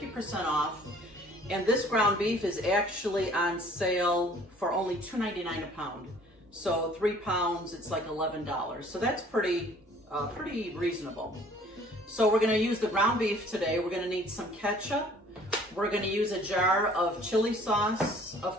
off. And this ground beef is actually on sale for only $2.99 a pound. So 3 pounds, it's like $11. So that's pretty reasonable. So we're gonna use the ground beef today. We're gonna need some ketchup. We're gonna use a jar of chili sauce, of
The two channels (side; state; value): both; normal; correlation 0.54